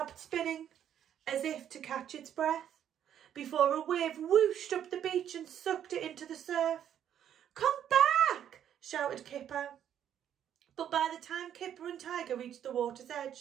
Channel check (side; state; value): left; quieter; 9.9 dB